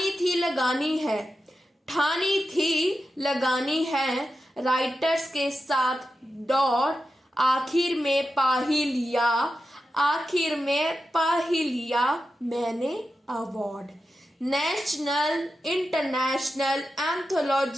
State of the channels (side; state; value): both; normal; correlation 0.90